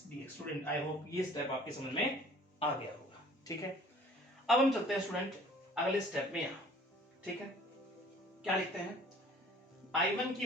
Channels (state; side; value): normal; both; correlation 0.52